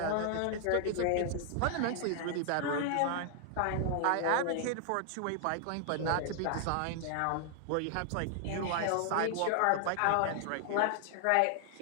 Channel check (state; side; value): different; both; correlation 0.00